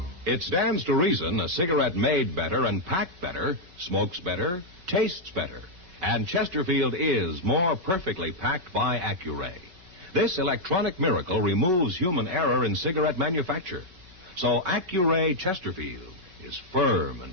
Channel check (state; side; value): late; left; 5.3 ms